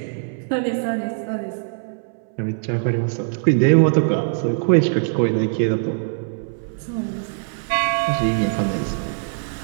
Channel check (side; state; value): left; silent; 64 dB below the other